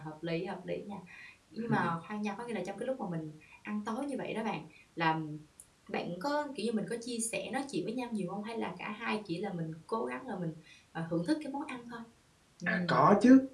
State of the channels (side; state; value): both; identical; correlation 1.00